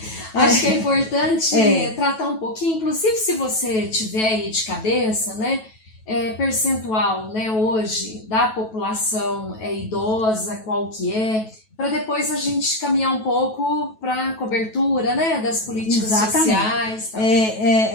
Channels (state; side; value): late; right; 9.2 ms